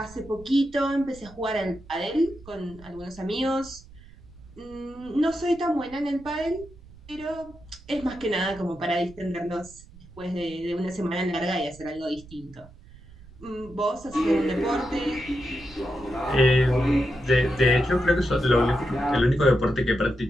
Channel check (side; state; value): right; noise; rumble, 21 dB below the sound